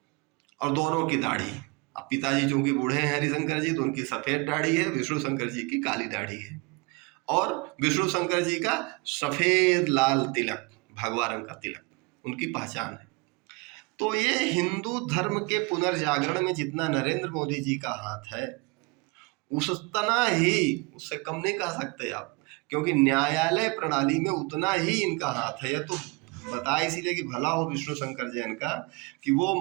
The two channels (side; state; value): left; quieter; 27.0 dB